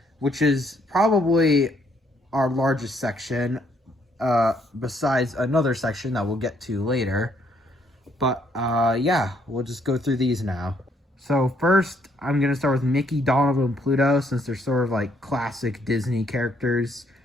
which is probably our largest section, besides another section that we'll get to later. But yeah, we'll just go through these now. So first, I'm going to start with Mickey, Donald, and Pluto, since they're sort of like classic Disney characters.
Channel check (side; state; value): both; normal; correlation 0.69